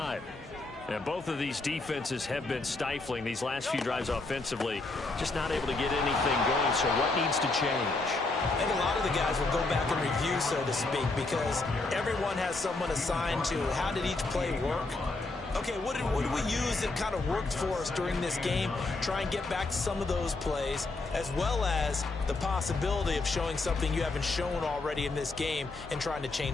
And both of these defenses have been stifling these last few drives offensively. Just not able to get anything going, so what needs to change? I think a lot of the guys will go back and review, so to speak, because everyone has someone assigned to how did each play work. Okay, what did we use that kind of worked for us during this game? Try and get back to some of those plays, as well as the possibility of showing something you haven't shown already in this game and trying to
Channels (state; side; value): quieter; right; 3.3 dB